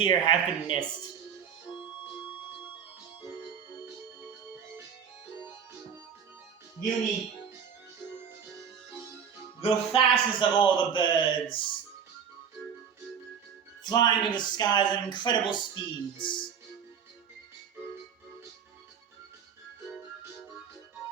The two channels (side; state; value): left; quieter; 7.4 dB